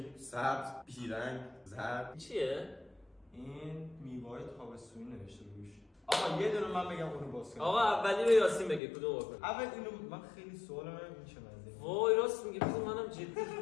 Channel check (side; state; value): right; drops out; at 8.8 s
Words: سبز، بیرنگ، زرد. چیه؟ این میوه‌های تابستونی نوشته روش. آقا یه دونه من بگم اونو باز کنم. آقا اولی رو یاسین بگه کدوم بکنیم. اول اینو من خیلی سوالم این چه مزه. وای راست میگه، بذار منم جدی